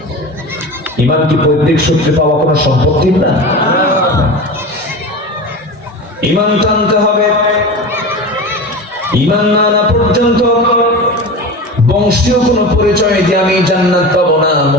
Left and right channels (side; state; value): both; normal; correlation 0.29